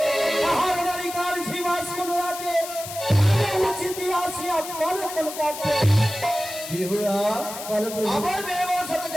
কাহার নারী কার জীবাস কোন রাখে উচিত আসিয়া বলে কোন কাছে বিহুরা আমার মেয়ের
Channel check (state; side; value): noise; left; hiss, 10 dB below the sound